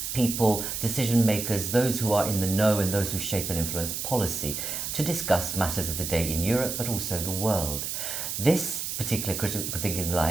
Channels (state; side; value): noise; right; hiss, 4 dB below the sound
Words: people, decision makers, those who are in the know and those who shape and influence policy to discuss matters of the day in Europe but also the world. This particular Critical Thinking